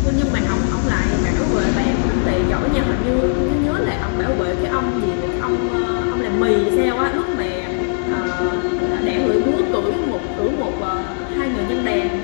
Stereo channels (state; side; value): silent; right; digital silence